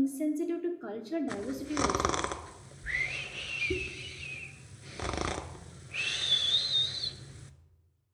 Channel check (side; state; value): both; identical; correlation 1.00